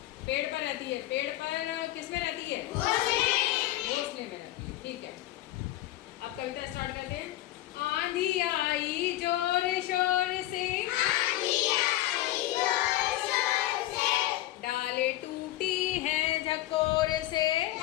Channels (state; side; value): quieter; right; 15.5 dB